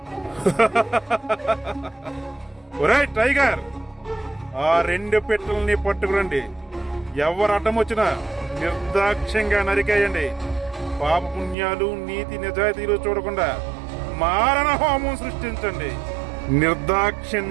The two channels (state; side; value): drops out; left; at 11.6 s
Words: ఒరేయ్ టైగర్, ఆ 2 పెట్టెల్ని పట్టుకురండి. ఎవరు అడ్డం వచ్చినా నిర్దాక్ష్యంగా నరికేయండి. పాప పుణ్యాలు నీతి నిజాయితీలు చూడకుండా మారణ హోమం సృష్టించండి.